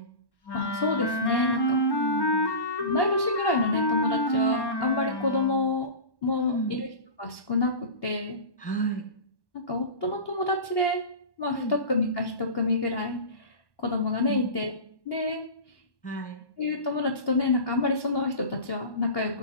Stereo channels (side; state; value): right; late; 1.1 ms